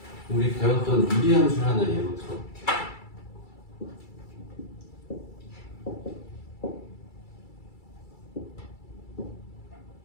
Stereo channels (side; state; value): right; late; 2.3 ms